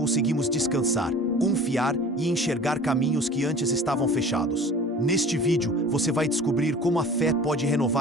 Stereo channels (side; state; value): both; normal; correlation 0.43